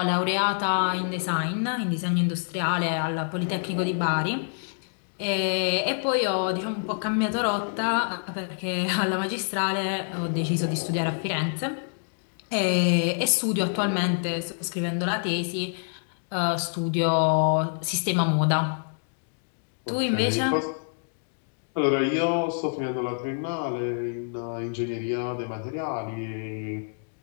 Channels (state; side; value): silent; right; digital silence